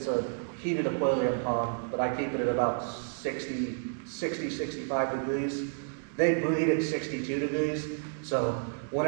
a heated aquarium pond, but I keep it at about 60, 65 degrees. They breed at 62 degrees, so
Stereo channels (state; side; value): silent; left; digital silence